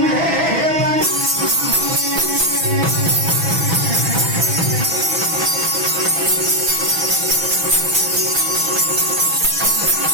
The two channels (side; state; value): left; late; 6.1 ms